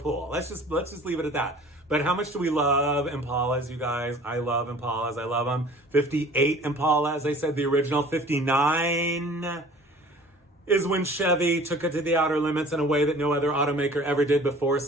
Let's just leave it at that. But how much do we love Impalas, you guys? I love Impalas. I love them. 58 Impala, as I said, the original. 59 is when Chevy took it to the outer limits in a way that no other automaker ever did before,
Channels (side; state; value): both; normal; correlation 0.47